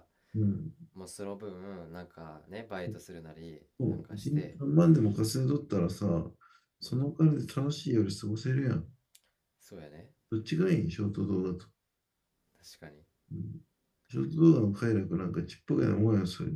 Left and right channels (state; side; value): identical; both; correlation 1.00